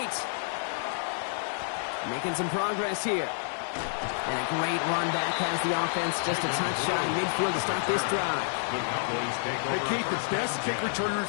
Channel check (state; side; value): silent; right; digital silence